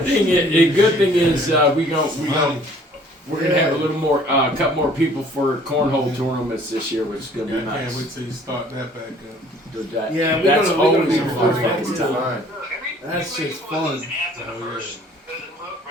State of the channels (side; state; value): both; normal; correlation 0.55